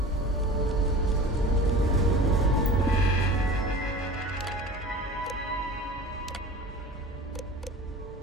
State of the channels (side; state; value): both; normal; correlation 0.38